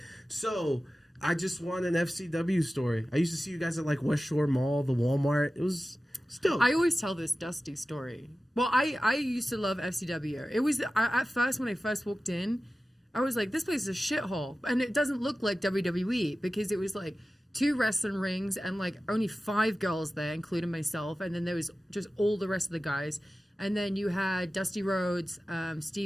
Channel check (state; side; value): normal; both; correlation 0.95